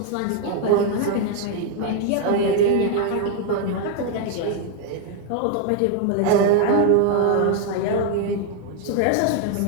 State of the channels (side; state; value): both; different; correlation 0.00